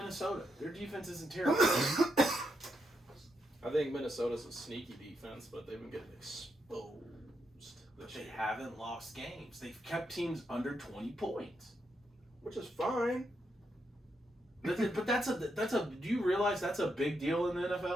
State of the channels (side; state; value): both; normal; correlation 0.81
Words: Their defense isn't terrible. I think Minnesota's a sneaky defense, but they've been getting exposed. But this they year. haven't lost games. They've kept teams under 20 points. Which is fine. But that's a do you realize that's a big deal in the